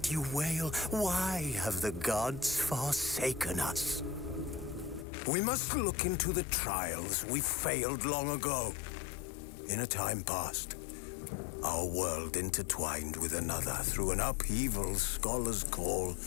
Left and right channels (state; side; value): drops out; right; at 5.1 s